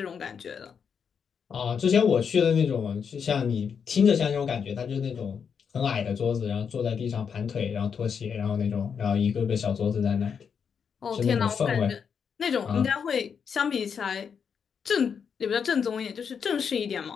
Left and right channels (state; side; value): quieter; right; 6.8 dB